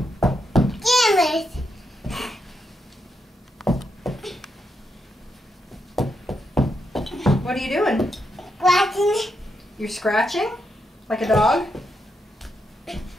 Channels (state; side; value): normal; both; correlation 0.82